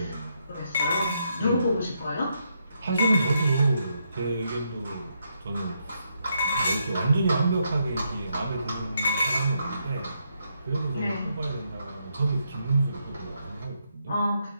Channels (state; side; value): inverted; both; correlation -0.78